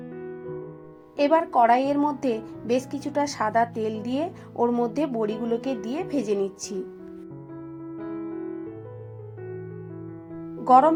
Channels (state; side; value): identical; both; correlation 1.00